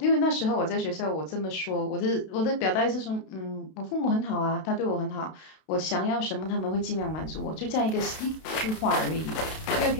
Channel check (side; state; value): right; late; 32 ms